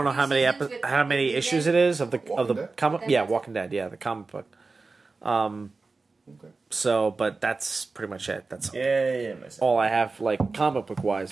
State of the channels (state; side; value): quieter; left; 3.9 dB